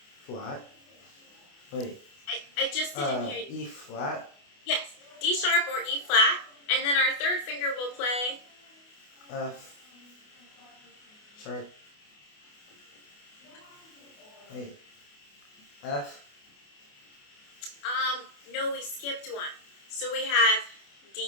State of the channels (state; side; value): late; right; 28 ms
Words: flat. Wait. I just didn't hear you. E flat. Yes, D sharp or E flat. And then our third finger will play? F sharp. Wait. F. No, we skipped one. So we have